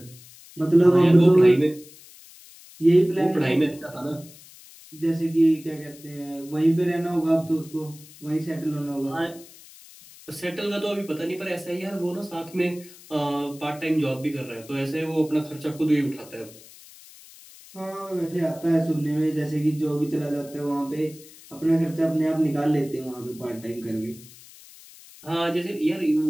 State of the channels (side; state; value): left; noise; hiss, 21 dB below the sound